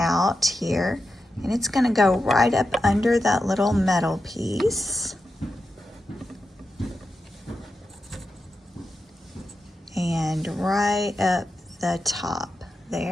here, and it's gonna go right up under that little metal piece. And right up the top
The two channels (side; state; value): both; normal; correlation 0.89